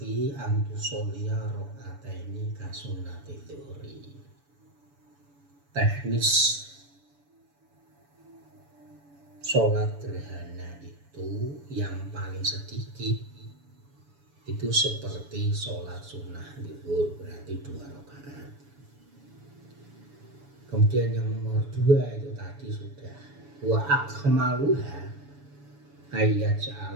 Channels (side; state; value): left; late; 7.0 ms